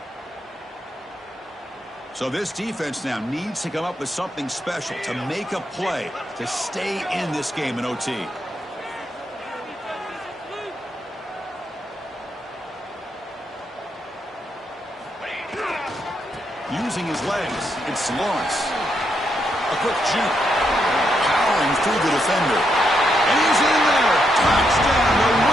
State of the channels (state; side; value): normal; both; correlation 0.80